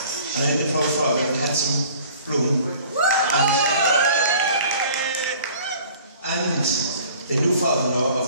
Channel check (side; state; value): both; inverted; correlation -0.49